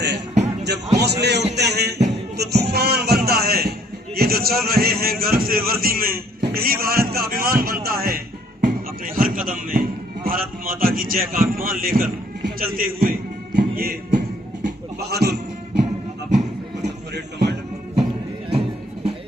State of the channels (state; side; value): normal; both; correlation 0.62